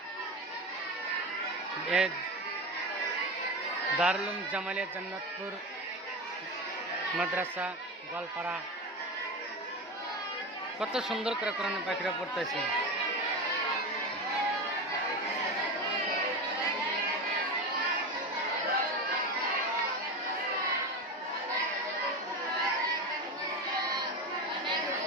দারুল উলুম জামালিয়া জান্নাতুর মাদ্রাসা গোয়ালপাড়া, কত সুন্দর করে কোরআনের পাখিরা পড়তেছে।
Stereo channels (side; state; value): both; normal; correlation 0.22